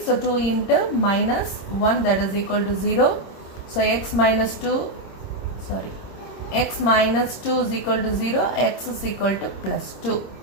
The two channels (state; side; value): late; right; 26 ms